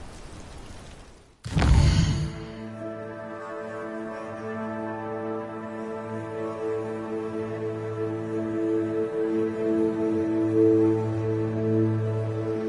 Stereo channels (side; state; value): both; identical; correlation 1.00